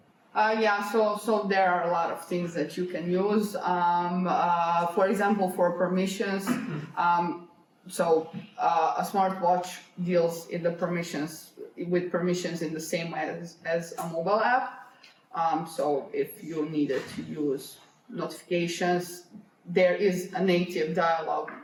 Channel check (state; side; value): identical; both; correlation 1.00